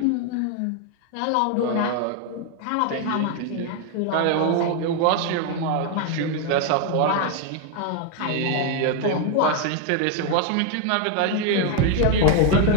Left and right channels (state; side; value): different; both; correlation 0.01